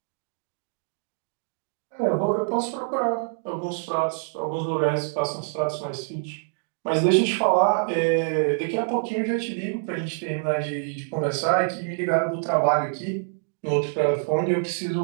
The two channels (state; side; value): silent; left; digital silence